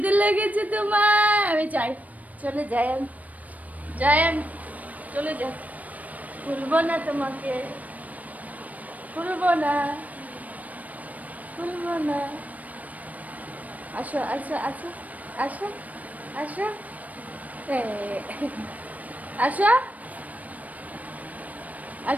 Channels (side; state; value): left; late; 0.073 ms